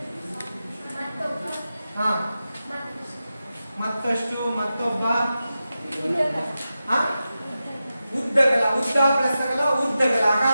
ಮತ್ತಷ್ಟು, ಮತ್ತೊಬ್ಬ, ಉದ್ದಗಲ, ಉದ್ದ ಪ್ಲಸ್ ಅಗಲ, ಉದ್ದಗಲ,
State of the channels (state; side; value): inverted; both; correlation -0.92